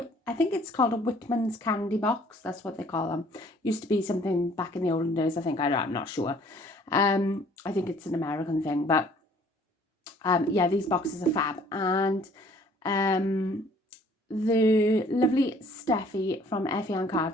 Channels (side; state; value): both; normal; correlation 0.57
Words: think it's called a Whitman's candy box. That's what they call them. Used to be something back in the olden days, I think. I'm not sure. I think it's an American thing, but yeah, these boxes are fab. And the lovely Steffi from Effiann